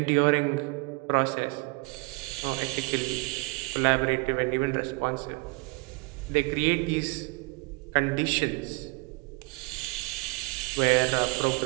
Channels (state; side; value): quieter; left; 28.5 dB